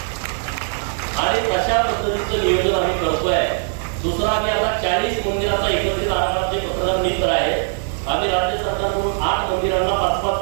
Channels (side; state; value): left; silent; 65 dB below the other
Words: आणि तशा पद्धतीचं नियोजन आम्ही करतोय. दुसरा, आम्ही आता 40 मंदिराचा एकत्रित आराखडा पत्रकार मित्र आहे. आम्ही राज्य सरकारकडून 8 मंदिरांना 5-5